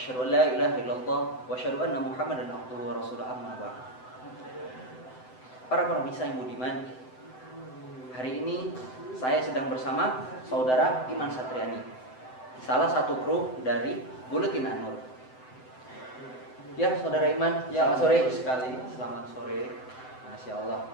an la ilaha illallah wa asyhadu anna Muhammadan abduhu wa rasuluhu amma ba'd. Para pemirsa yang budiman, hari ini saya sedang bersama saudara Iman Satriani, salah satu kru dari Buletin An-Nur. Ya, saudara Iman, Ya, selamat sore. sekali. Selamat sore. Masya Allah.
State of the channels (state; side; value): late; right; 7.9 ms